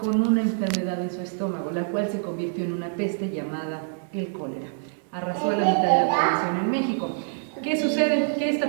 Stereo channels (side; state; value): left; silent; digital silence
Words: una enfermedad en su estómago, la cual se convirtió en una peste llamada el cólera. Arrasó a la mitad de la población en México. ¿Qué sucede? Que esta